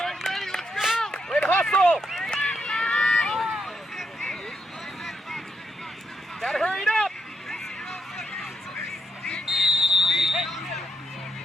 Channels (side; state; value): both; normal; correlation 0.80